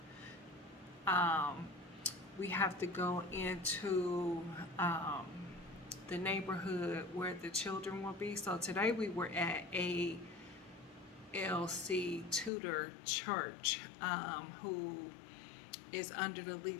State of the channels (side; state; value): right; drops out; at 12.5 s